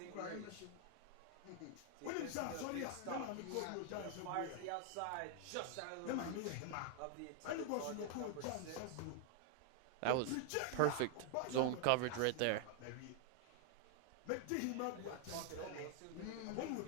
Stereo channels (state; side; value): different; both; correlation 0.00